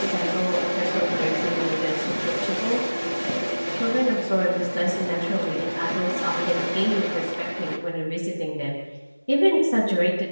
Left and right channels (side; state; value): both; inverted; correlation -1.00